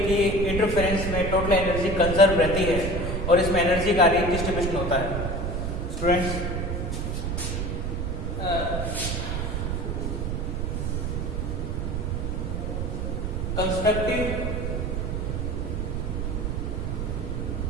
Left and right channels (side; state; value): right; noise; rumble, 1 dB below the sound